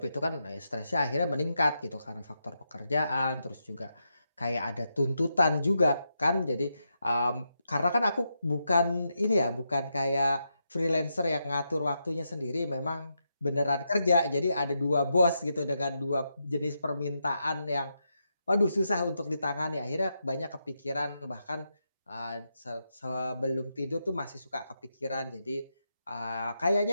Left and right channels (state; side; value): inverted; both; correlation -0.84